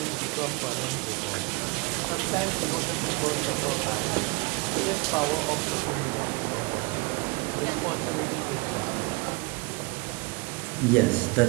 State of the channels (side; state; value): left; quieter; 27.8 dB